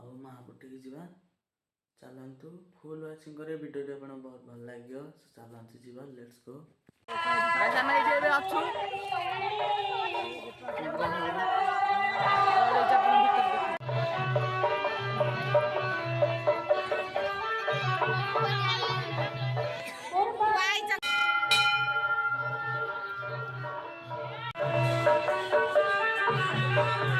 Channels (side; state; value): both; identical; correlation 1.00